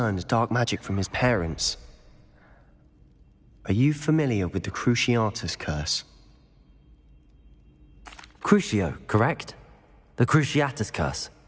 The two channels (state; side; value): identical; both; correlation 1.00